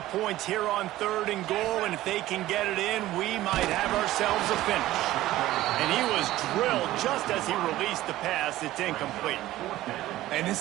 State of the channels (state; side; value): quieter; left; 15.6 dB